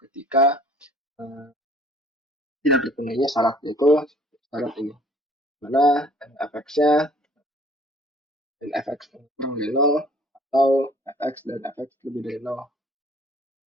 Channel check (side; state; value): both; normal; correlation 0.55